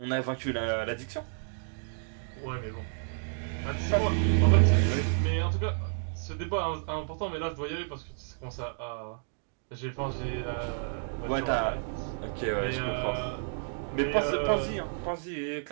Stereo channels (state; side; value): silent; left; digital silence